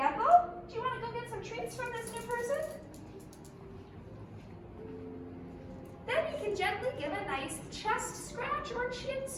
Do you want to go get some treats from this new person? Then you can gently give a nice chest scratch or chin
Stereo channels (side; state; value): both; identical; correlation 1.00